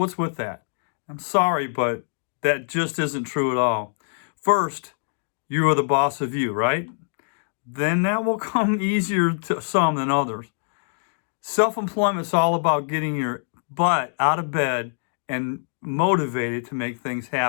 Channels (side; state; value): right; silent; digital silence